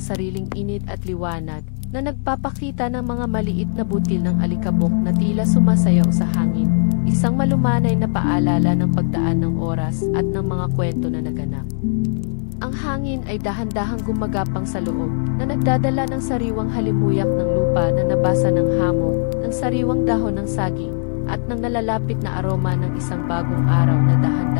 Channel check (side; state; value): right; silent; digital silence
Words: init at liwanag, na nagpapakita ng mga maliit na butil ng alikabok na tila sumasayaw sa hangin, isang malumanay na paalala ng pagdaan ng oras at ng mga kwento na naganap. Ang hangin ay dahan-dahang gumagapang sa loob, na nagdadala ng sariwang halimuyak ng lupa na nabasa ng hamog, ng sariwang dahon ng saging, at ng nalalapit na aroma ng isang bagong araw na